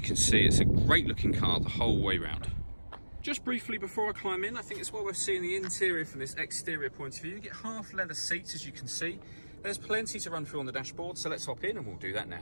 see it's a great looking car the whole way round. Just briefly before I climb in, I think it's well worth seeing the interior from this exterior point of view. You get half leather seats, as you can see. There's plenty to run through on the dashboard, so let's hop in and we'll do that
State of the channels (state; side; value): inverted; both; correlation -1.00